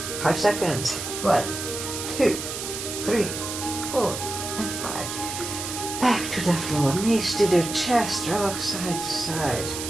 5 seconds. 1, 2, 3, 4, and 5. Back to the floor, knees to the chest, rock side to side.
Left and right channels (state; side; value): noise; right; hiss, 6 dB below the sound